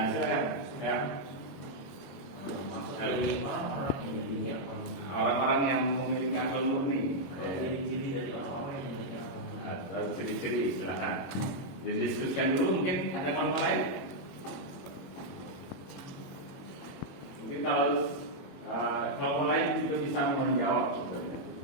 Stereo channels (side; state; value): right; late; 22 ms